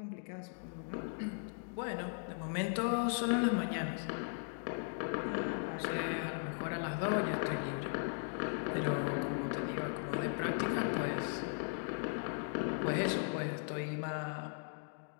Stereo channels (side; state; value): right; silent; 53 dB below the other